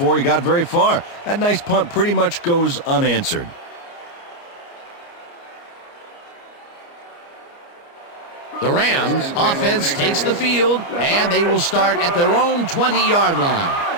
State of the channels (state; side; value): late; right; 29 ms